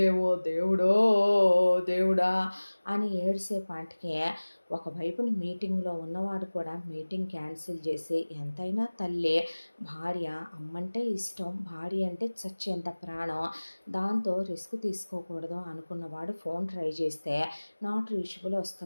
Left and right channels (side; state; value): both; inverted; correlation -1.00